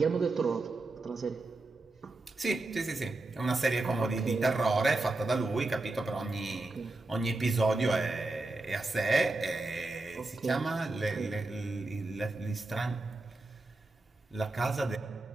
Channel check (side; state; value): left; quieter; 3.1 dB